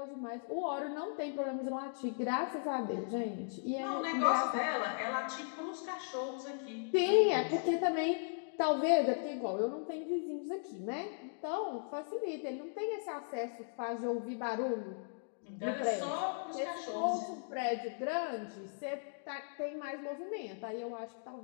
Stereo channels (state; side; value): silent; right; digital silence